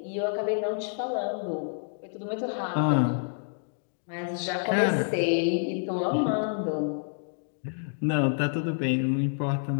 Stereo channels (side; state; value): right; silent; digital silence